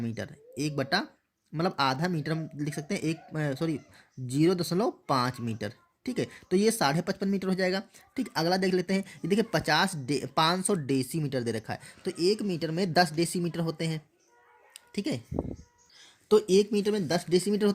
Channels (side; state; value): both; identical; correlation 1.00